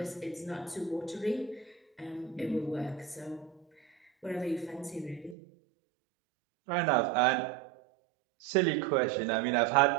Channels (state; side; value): drops out; left; at 5.4 s